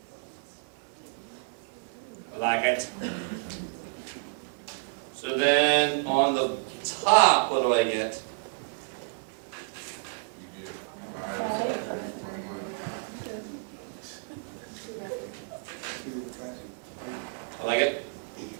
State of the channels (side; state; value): left; silent; 58 dB below the other